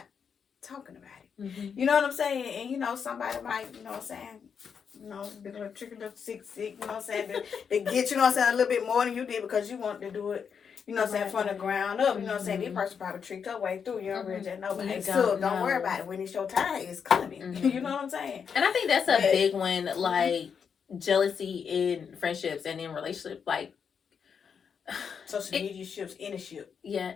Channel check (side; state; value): right; quieter; 6.8 dB